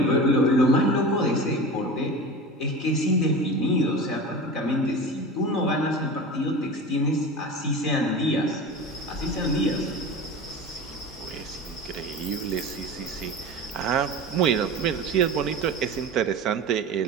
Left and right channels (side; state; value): both; normal; correlation 0.31